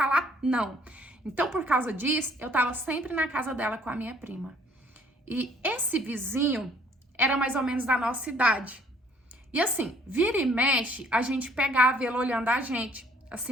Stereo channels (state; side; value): normal; both; correlation 0.60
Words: não. Então, por causa disso, eu tava sempre na casa dela com a minha prima. E esse vizinho era mais ou menos da nossa idade. E assim, vira e mexe, a gente pegava ele olhando a gente,